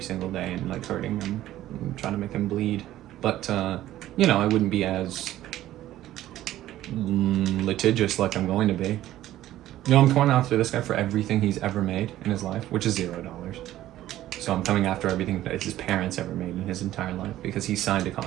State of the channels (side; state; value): left; quieter; 14.0 dB